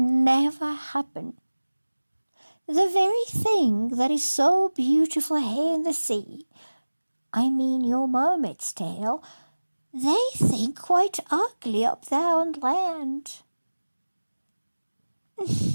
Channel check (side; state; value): both; inverted; correlation -1.00